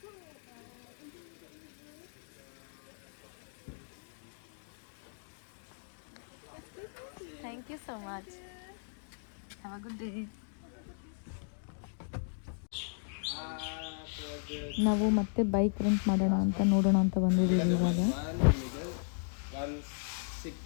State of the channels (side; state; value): right; silent; digital silence